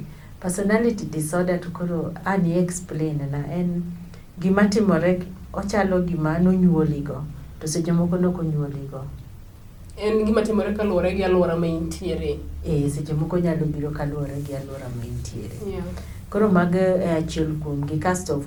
Personality disorder to koro ani explain na en gima timore, ochalo gima nonyuoligo, to seche moko nokonyuoligo. En gima timore kaluwore gi alwora ma intiere. Seche moko nyalo biro kaluwore gi alwora ma intiere. Yeah. Koro mago achiel kuomgi. Kasto of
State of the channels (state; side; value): identical; both; correlation 1.00